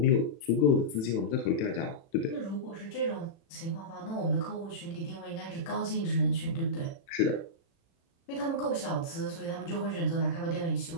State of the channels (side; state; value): right; late; 36 ms